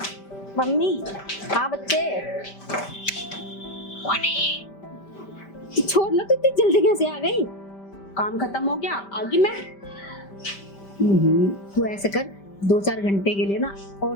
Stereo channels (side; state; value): right; late; 5.1 ms